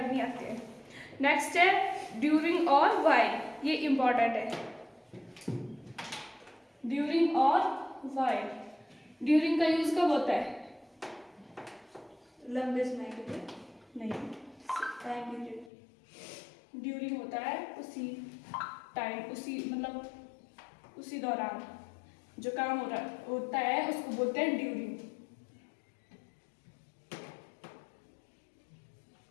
नहीं आते हैं। नेक्स्ट है ड्यूरिंग और व्हाइल, ये इंपॉर्टेंट है। ड्यूरिंग और व्हाइल, ड्यूरिंग का यूज कब होता है? लंबे समय के लिए नहीं, टाइम पीरियड। ड्यूरिंग होता है उसी टाइम, उसी मतलब उसी दौरान जो काम होता है उसको बोलते हैं ड्यूरिंग।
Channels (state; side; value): drops out; right; at 15.7 s